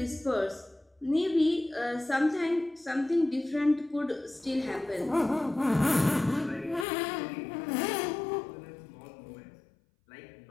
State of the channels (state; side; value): drops out; right; at 6.9 s